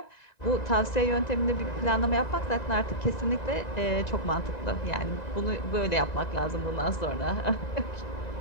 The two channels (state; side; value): late; right; 1.9 ms